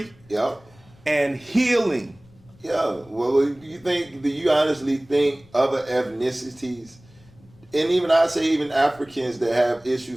and healing. Yeah, well, do you honestly think other ethnicities, and even I say even Africans that have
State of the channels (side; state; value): left; noise; rumble, 27 dB below the sound